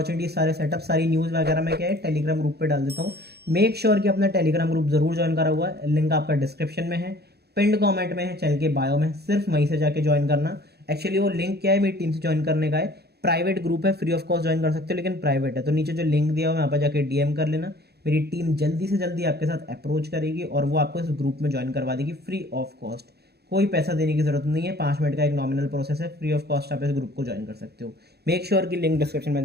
सारे सेटअप, सारी न्यूज़ वगैरह में क्या है, टेलीग्राम ग्रुप पे डाल देता हूँ। मेक श्योर कि अपना टेलीग्राम ग्रुप जरूर ज्वाइन करा हुआ है, लिंक आपका डिस्क्रिप्शन में है, पिंड कमेंट में है, चैनल के बायो में, सिर्फ वहीं से जाके ज्वाइन करना। एक्चुअली वो लिंक क्या है, मेरी टीम से ज्वाइन करने का है, प्राइवेट ग्रुप है, फ्री ऑफ कॉस्ट ज्वाइन कर सकते हो, लेकिन प्राइवेट है। तो नीचे जो लिंक दिया हुआ है वहाँ पर जाके डीएम कर लेना। मेरी टीम जल्दी से जल्दी आपके साथ अप्रोच करेगी और वो आपको इस ग्रुप में ज्वाइन करवा देगी फ्री ऑफ कॉस्ट। कोई पैसा देने की जरूरत नहीं है, 5 मिनट का एक नॉमिनल प्रोसेस है, फ्री ऑफ कॉस्ट आप इस ग्रुप को ज्वाइन कर सकते हो। मेक श्योर कि लिंक डिस्क्रिप्शन में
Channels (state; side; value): late; left; 0.47 ms